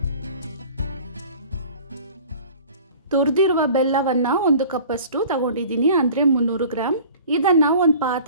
ತುರಿದಿರುವ ಬೆಲ್ಲವನ್ನು 1 ಕಪ್ಪಷ್ಟು ತಗೊಂಡಿದ್ದೀನಿ, ಅಂದರೆ 300 ಗ್ರಾಮ್. ಇದನ್ನು ಒಂದು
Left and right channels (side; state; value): both; inverted; correlation -0.45